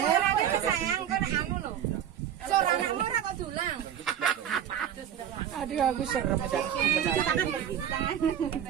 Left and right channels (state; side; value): quieter; left; 9.8 dB